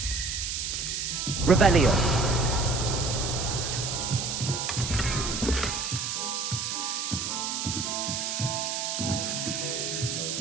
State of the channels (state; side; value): noise; right; hiss, 2 dB below the sound